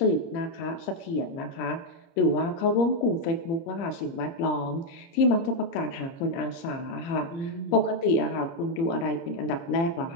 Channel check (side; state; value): right; late; 30 ms